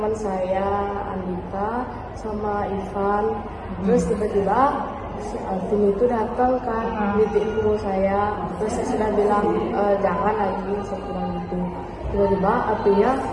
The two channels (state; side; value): identical; both; correlation 1.00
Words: saya, Andika sama Ivan. Terus tiba-tiba si Alvin itu datang kan, ngeliatin punggung saya. Terus saya sudah bilang jangan lagi, saya bilang gitu. Tiba-tiba Alvinnya